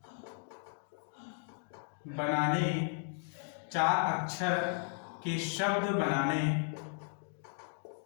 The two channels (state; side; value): silent; right; 54 dB below the other